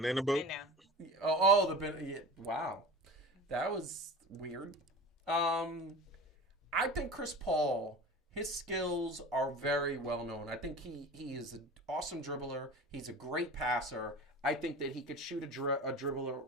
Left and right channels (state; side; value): normal; both; correlation 0.35